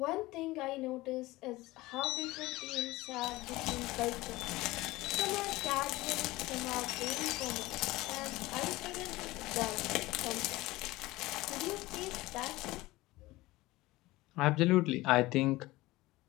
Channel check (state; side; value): quieter; right; 19.3 dB